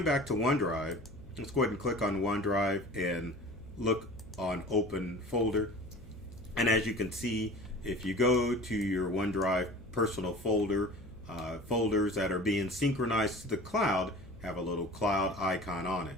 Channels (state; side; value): noise; left; hum, 25 dB below the sound